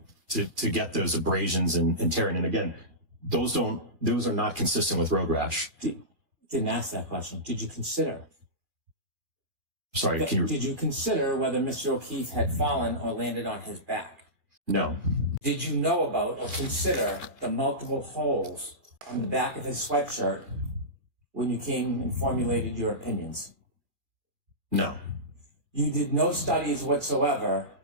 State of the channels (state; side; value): late; left; 2.3 ms